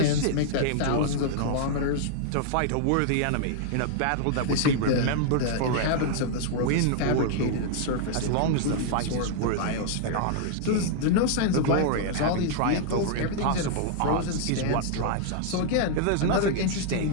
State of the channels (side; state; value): both; different; correlation -0.01